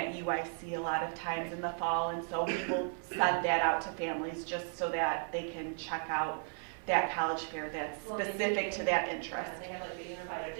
a lot of times in the fall. And so we will send that out to families just so that they can check out that college fair that's specific to that interest. They have the unified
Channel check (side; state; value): left; silent; 54 dB below the other